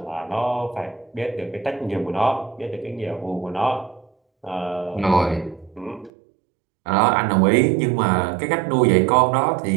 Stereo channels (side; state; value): left; drops out; at 6.1 s